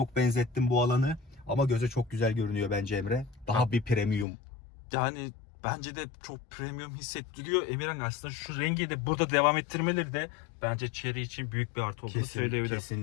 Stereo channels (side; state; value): right; drops out; at 4.2 s